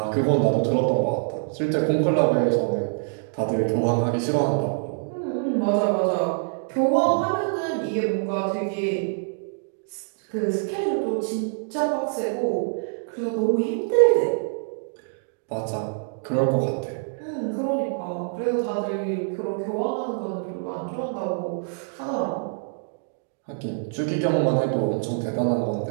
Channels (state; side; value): silent; left; digital silence